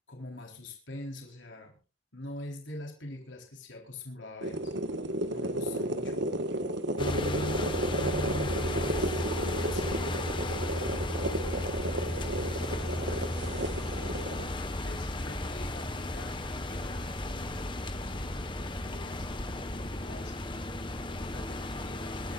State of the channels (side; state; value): both; normal; correlation 0.41